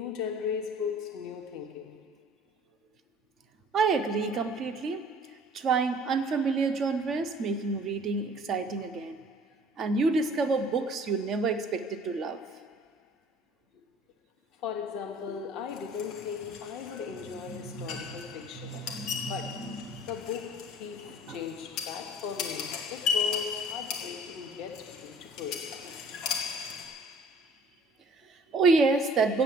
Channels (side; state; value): both; normal; correlation 0.51